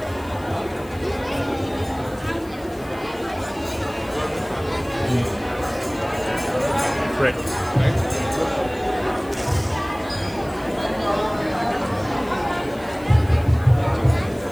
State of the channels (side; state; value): left; noise; hiss, 23 dB below the sound